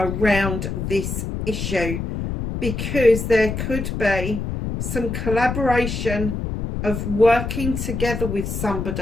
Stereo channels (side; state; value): left; noise; rumble, 4 dB below the sound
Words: this issue, because there could be some collaboration of working together with